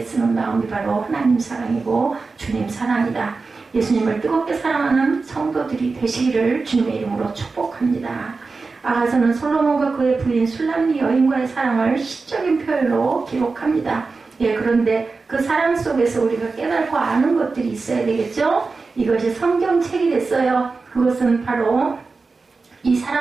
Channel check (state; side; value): quieter; left; 4.2 dB